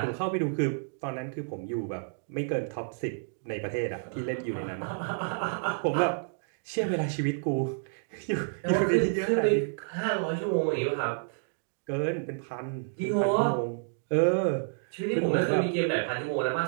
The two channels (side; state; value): left; silent; digital silence